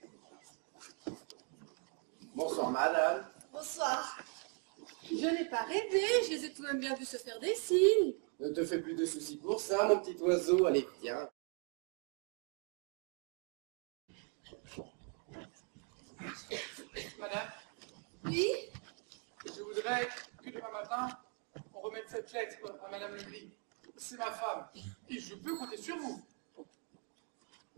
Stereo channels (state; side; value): quieter; left; 40.0 dB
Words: Bonsoir, madame. Bonsoir. Je n'ai pas rêvé, je les ai tout de même bien vus se faire des signes. Ne te fais plus de soucis pour ça, mon petit oiseau. Allez, viens. Madame, Oui? je voudrais que demain matin, on remette cette lettre à Madame Legris. C'est ma femme, et je peux compter sur vous.